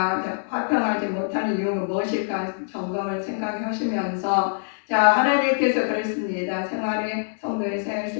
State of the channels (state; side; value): silent; right; digital silence